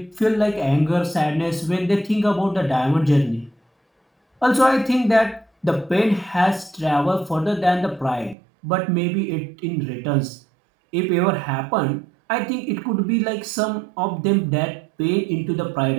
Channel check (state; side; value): drops out; left; at 8.3 s